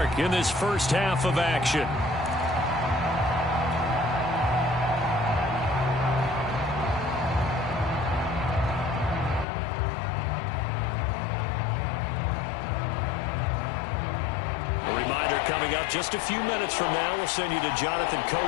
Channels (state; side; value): drops out; right; at 9.5 s